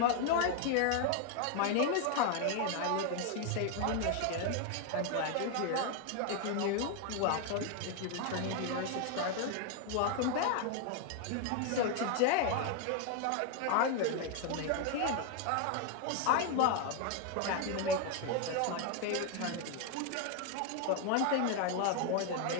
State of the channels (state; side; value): different; both; correlation 0.01